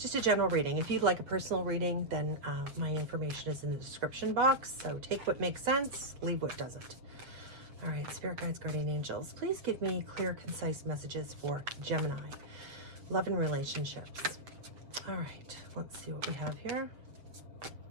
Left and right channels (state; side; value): late; left; 7.5 ms